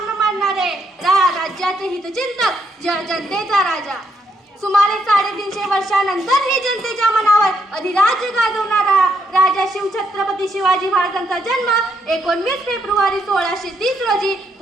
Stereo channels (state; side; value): normal; both; correlation 0.76